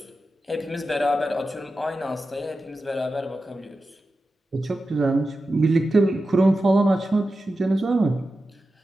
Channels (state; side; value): normal; both; correlation 0.92